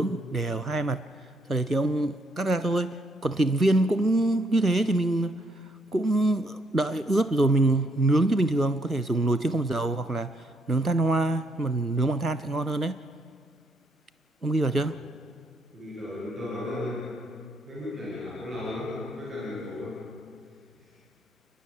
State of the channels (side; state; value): both; normal; correlation 0.72